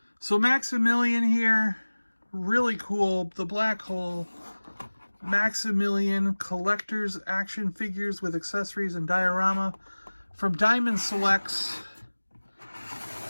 So Maximilian here. Really cool. The black hole. Maximilian collector's action figures with accessories and diorama from Diamond Selects.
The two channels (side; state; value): both; inverted; correlation -1.00